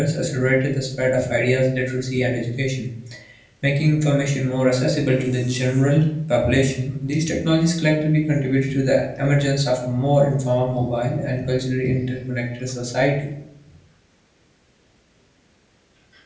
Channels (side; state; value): both; identical; correlation 1.00